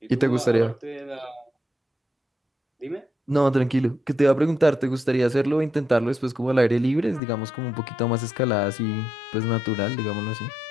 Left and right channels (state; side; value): drops out; right; at 7.2 s